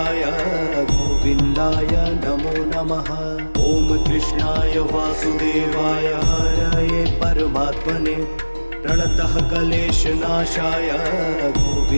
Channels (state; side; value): inverted; both; correlation -1.00